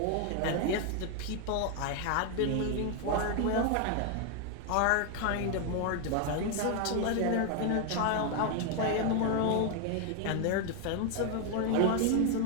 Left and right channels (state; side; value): different; both; correlation 0.00